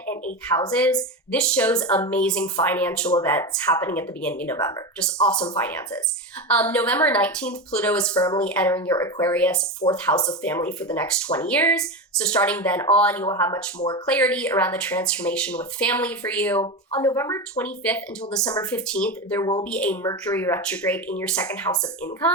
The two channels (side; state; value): both; normal; correlation 0.20